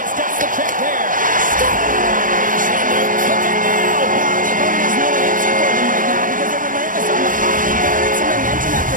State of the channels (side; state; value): left; late; 0.39 ms